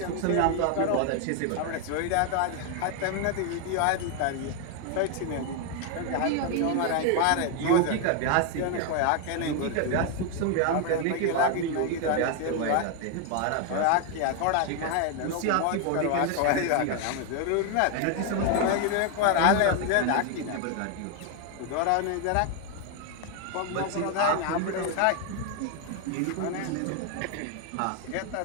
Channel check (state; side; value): different; both; correlation 0.01